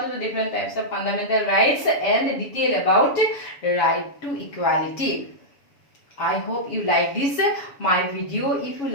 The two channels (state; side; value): late; right; 7.0 ms